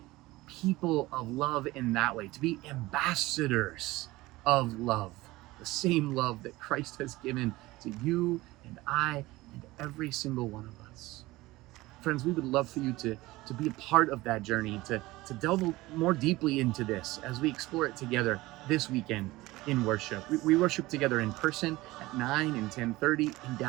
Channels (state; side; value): quieter; left; 19.3 dB